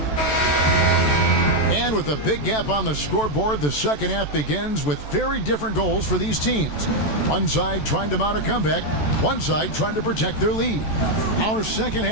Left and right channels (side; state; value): right; late; 14 ms